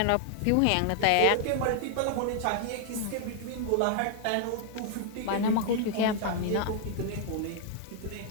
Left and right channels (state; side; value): different; both; correlation 0.00